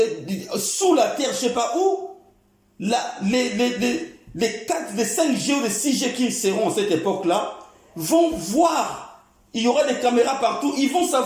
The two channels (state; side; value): identical; both; correlation 1.00